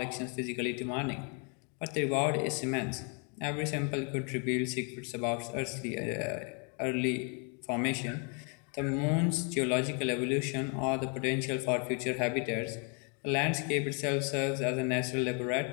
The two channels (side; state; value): right; quieter; 37.9 dB